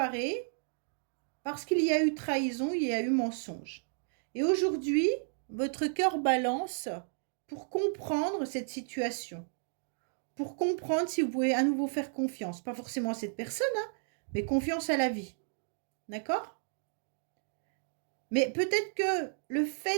parce qu'il y a eu trahison, il y a eu mensonge. Et aujourd'hui, votre cœur balance pour comprendre cette situation, pour comprendre si vous pouvez à nouveau faire confiance, pas forcément à cette personne, hein, mais confiance à la vie. D'accord? Mais peut-être que le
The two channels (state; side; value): silent; left; digital silence